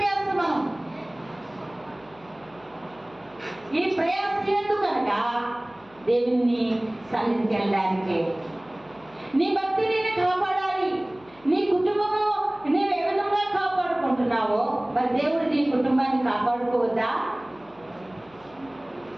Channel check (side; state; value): left; noise; hum, 27 dB below the sound